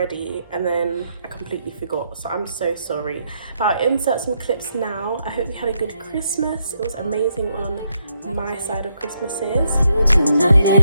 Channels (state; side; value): inverted; both; correlation -0.77